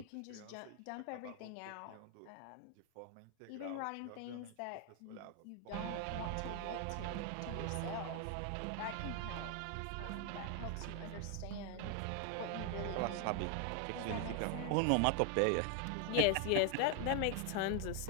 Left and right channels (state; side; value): different; both; correlation 0.00